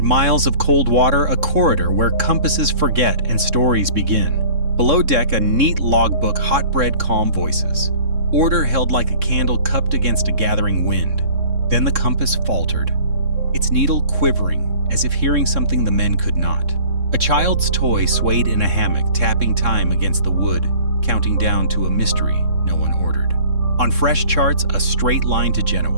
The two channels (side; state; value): left; late; 3.6 ms